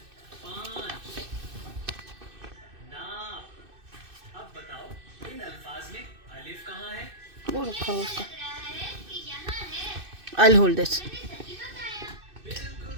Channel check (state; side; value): late; left; 2.6 ms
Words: 5 नाप। अब बताओ इन अल्फाज में अलिफ कहाँ है? वो रखा हुआ उसका। I'll hold this. बिल्कुल